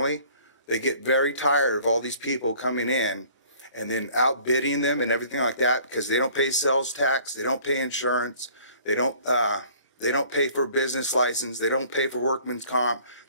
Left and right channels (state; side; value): late; right; 25 ms